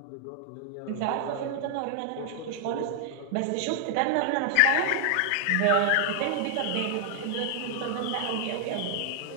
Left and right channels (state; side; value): different; both; correlation 0.00